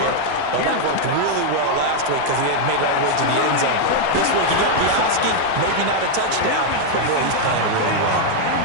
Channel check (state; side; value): different; both; correlation 0.00